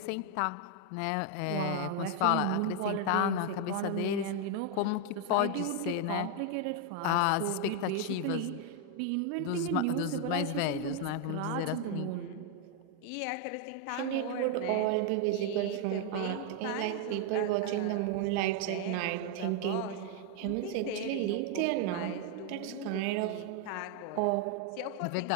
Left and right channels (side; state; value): both; different; correlation 0.01